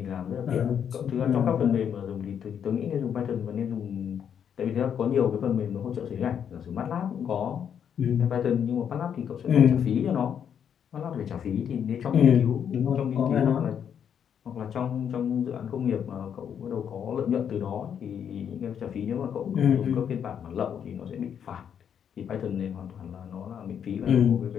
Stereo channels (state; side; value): quieter; right; 8.3 dB